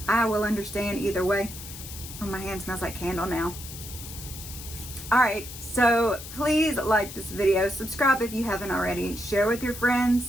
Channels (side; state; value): left; noise; hiss, 12 dB below the sound